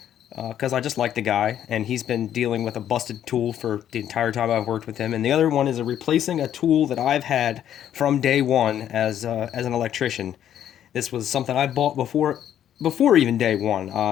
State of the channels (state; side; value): quieter; right; 10.5 dB